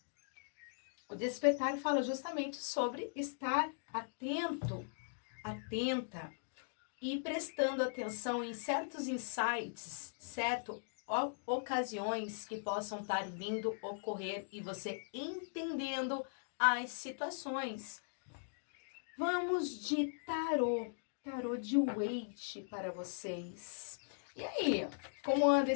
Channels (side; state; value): right; silent; digital silence